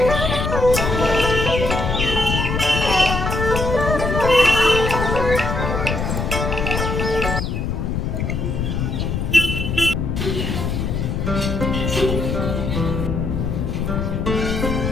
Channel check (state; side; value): noise; left; rumble, 1 dB below the sound